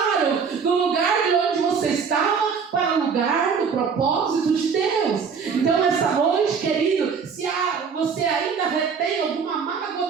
do lugar de onde você estava para o lugar do propósito de Deus. Então essa noite, querido, se você ainda retém alguma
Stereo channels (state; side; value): quieter; left; 6.0 dB